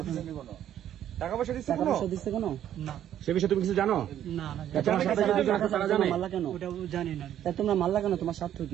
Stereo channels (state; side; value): quieter; left; 11.0 dB